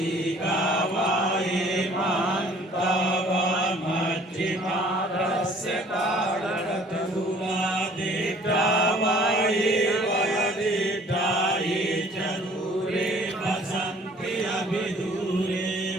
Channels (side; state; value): both; normal; correlation 0.55